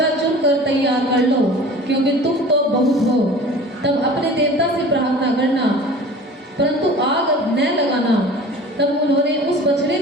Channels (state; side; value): normal; both; correlation 0.41